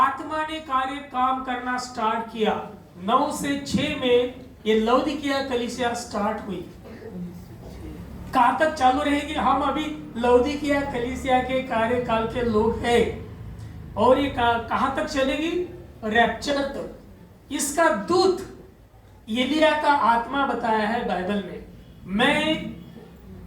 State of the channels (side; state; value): both; identical; correlation 1.00